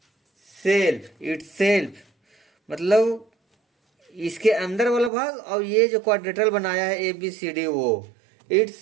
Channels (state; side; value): drops out; left; at 5.1 s